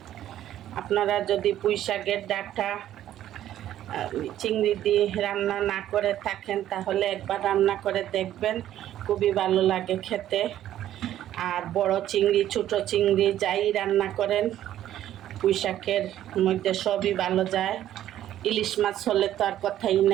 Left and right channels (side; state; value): left; quieter; 12.2 dB